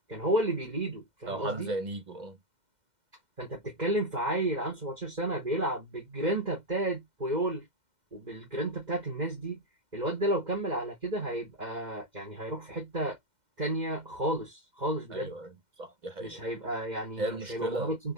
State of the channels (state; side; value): late; left; 2.1 ms